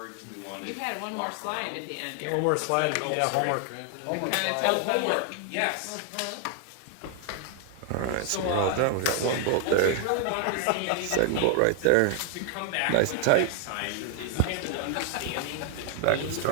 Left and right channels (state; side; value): different; both; correlation 0.00